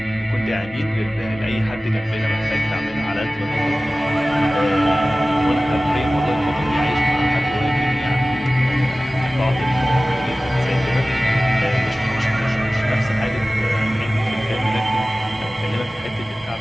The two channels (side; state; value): both; normal; correlation 0.97